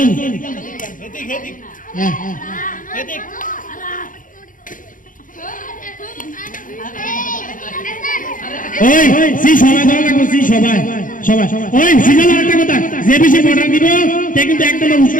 এদিক এদিক হ্যাঁ এদিক ওই সি সবাই ধরা লাগবে, সি সবাই সবাই ওই সিজন একটা কথা, যে বেশি অর্ডার দিব তে কিন্তু একদম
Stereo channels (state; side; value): late; right; 0.39 ms